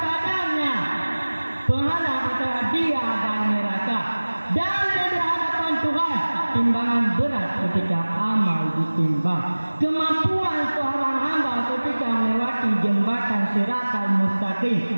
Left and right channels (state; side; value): inverted; both; correlation -1.00